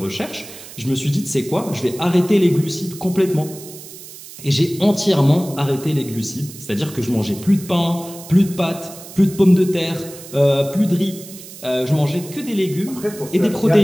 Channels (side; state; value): right; noise; hiss, 16 dB below the sound